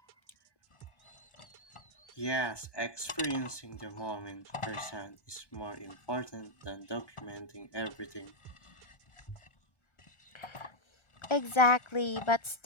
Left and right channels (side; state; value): right; late; 1.2 ms